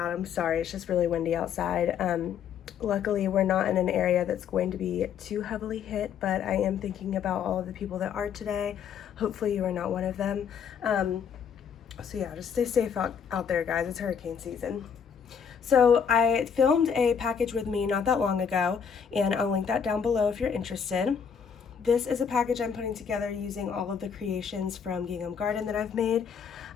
I'm sorry. It's just really windy outside. Luckily, we're not in an area that's going to be too heavily hit, but I am thinking about all of the people that are today. Hopefully you are not one of them. So yeah, just stay safe out there, guys. It's hurricane season. So I filmed a package with me not that long ago, and I'll link that down below if you're interested. This is a package I'm putting together using all of the creations from Gingham Garden that I've made.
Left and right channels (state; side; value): quieter; right; 7.2 dB